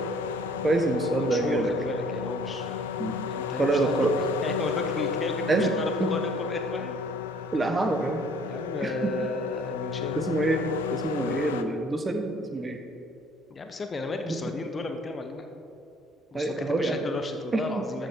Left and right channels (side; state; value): both; normal; correlation 0.57